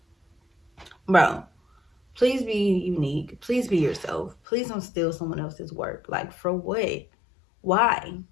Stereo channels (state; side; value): drops out; right; at 4.4 s